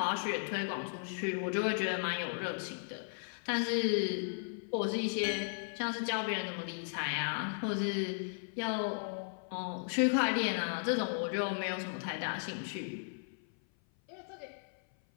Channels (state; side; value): silent; right; 54 dB below the other